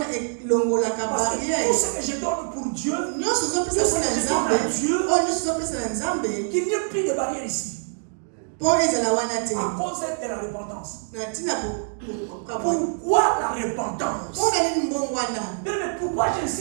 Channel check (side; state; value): left; silent; digital silence